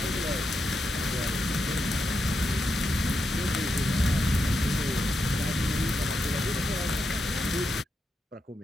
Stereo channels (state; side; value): normal; both; correlation 0.85